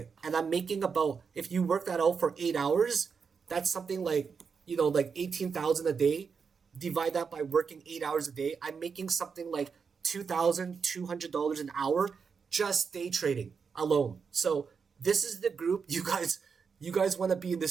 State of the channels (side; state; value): left; quieter; 5.8 dB